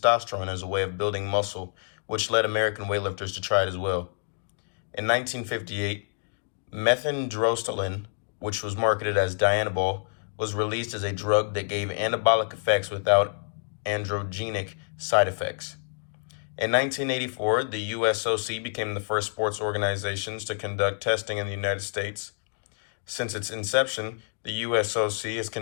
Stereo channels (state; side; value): silent; right; 60 dB below the other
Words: as a way of building muscle, which led American weightlifters to try it as well. In 1958, methandrosteline, which was marketed as Dianabol, was released as a drug that gave anabolic effects without androgenic side effects. In 1984, the USOC became the first sports organizations to conduct testing in the United States. Since its inception, the USOC has